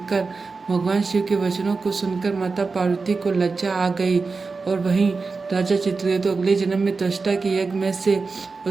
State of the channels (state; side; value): quieter; left; 4.3 dB